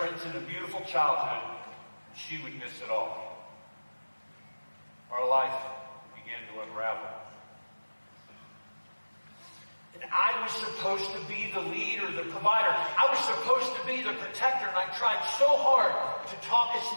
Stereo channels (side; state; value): both; inverted; correlation -1.00